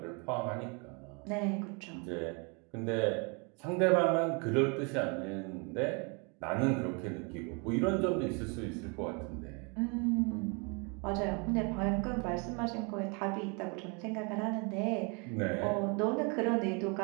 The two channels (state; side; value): quieter; left; 33.0 dB